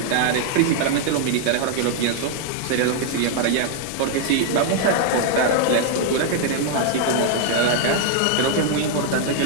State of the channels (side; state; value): both; different; correlation 0.00